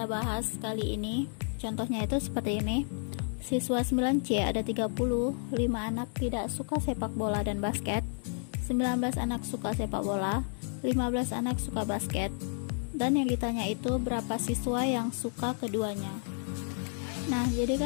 bahas kali ini. Contohnya itu seperti ini. Siswa 9C ada 30, 5 anak tidak suka sepak bola dan basket, 19 anak suka sepak bola, 15 anak suka basket, dan yang ditanya itu berapa siswa yang suka keduanya. Nah, jadi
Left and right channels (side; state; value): right; silent; 57 dB below the other